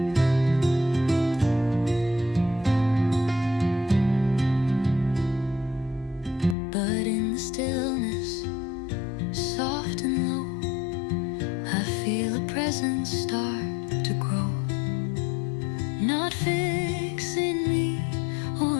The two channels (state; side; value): drops out; right; at 6.6 s